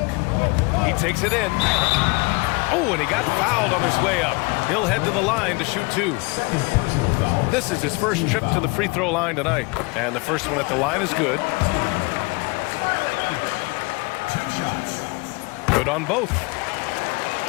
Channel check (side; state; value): right; quieter; 27.6 dB